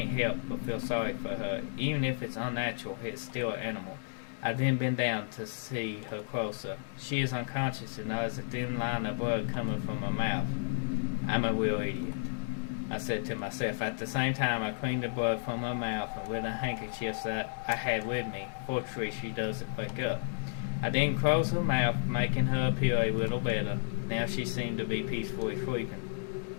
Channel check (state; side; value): silent; right; digital silence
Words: help but feel sorry for her. Even if it's unnatural, it's still an animal. I then bend down to see her closer. She is unconscious and there is a thin line of blood coming from her mouth. I'm a real idiot, I said to myself. At the same time, I cleaned the blood from her mouth and with a handkerchief that I had with me. Fortunately, she doesn't wake up. I then closed her mouth, making her appear a little better. Now she seemed to be peacefully sleeping.